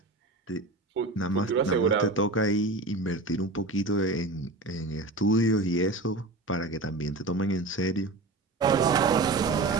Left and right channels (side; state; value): left; quieter; 3.1 dB